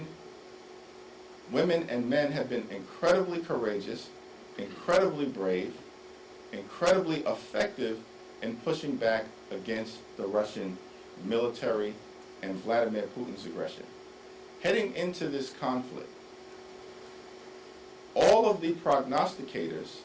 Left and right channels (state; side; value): identical; both; correlation 1.00